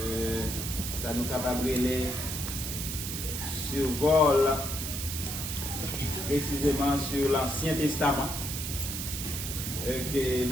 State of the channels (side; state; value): right; noise; hiss, 5 dB below the sound